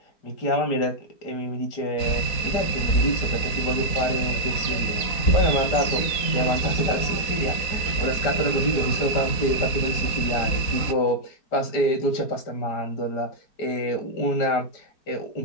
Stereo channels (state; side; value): late; right; 4.1 ms